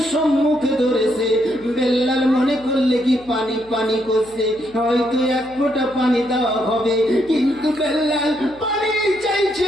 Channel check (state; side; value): noise; left; hum, 25 dB below the sound